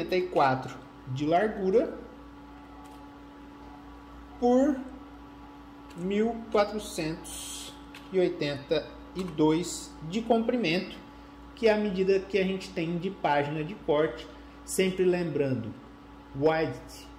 de largura por 1482 de comprimento, que é a medida que a gente tem de página de corte. Sempre lembrando, width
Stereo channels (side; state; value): both; identical; correlation 1.00